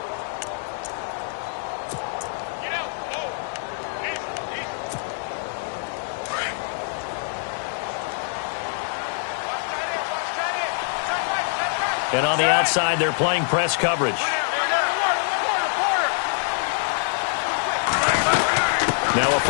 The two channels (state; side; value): silent; right; digital silence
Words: And on the outside, they're playing press coverage. Now a